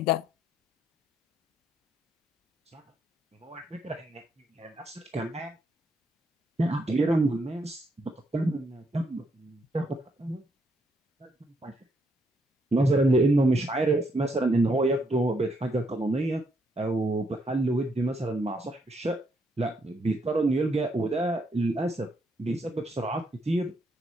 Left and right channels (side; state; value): both; normal; correlation 0.75